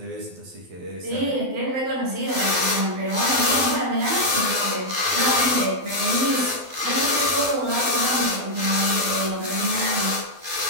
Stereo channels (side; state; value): left; late; 12 ms